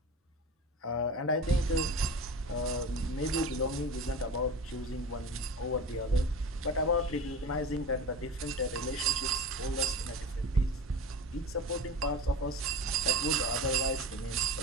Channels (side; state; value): both; normal; correlation 0.32